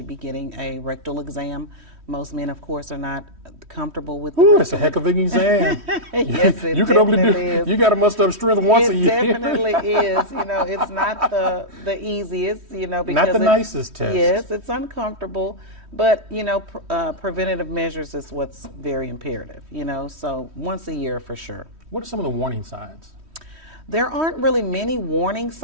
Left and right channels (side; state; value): left; late; 3.1 ms